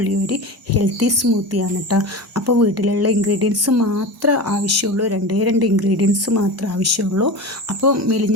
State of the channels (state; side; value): normal; both; correlation 0.27